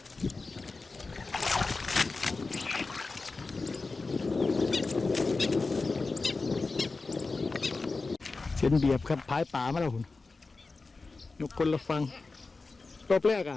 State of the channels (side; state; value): right; quieter; 3.8 dB